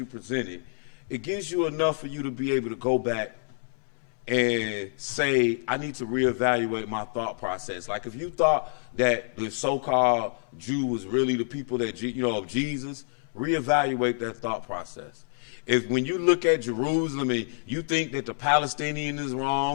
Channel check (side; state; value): right; silent; digital silence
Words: presented, it gives you enough for you to be able to go back and say, I need to reevaluate my thought process. Like if you thought that the so-called Jew was really the people that, of Jesus, reevaluate that thought process. If when you look at Jerusalem and you think that the Palestinian is